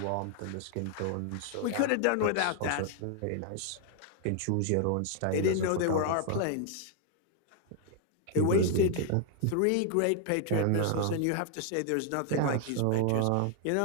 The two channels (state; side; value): different; both; correlation 0.00